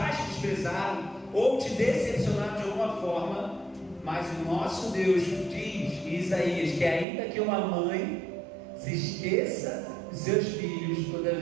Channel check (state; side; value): drops out; left; at 7.1 s